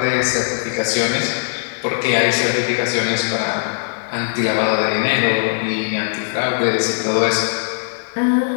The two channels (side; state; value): right; silent; 57 dB below the other